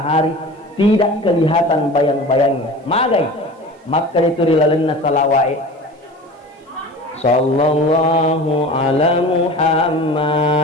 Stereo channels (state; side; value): normal; both; correlation 0.37